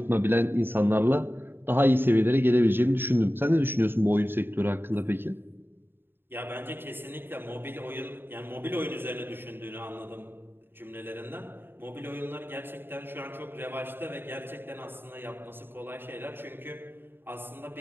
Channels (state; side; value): late; left; 0.10 ms